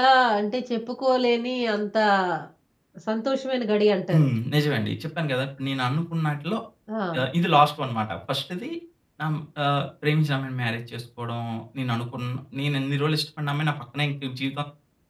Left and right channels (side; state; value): both; identical; correlation 1.00